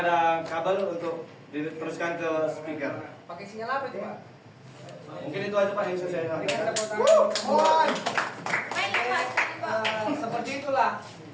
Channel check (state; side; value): identical; both; correlation 1.00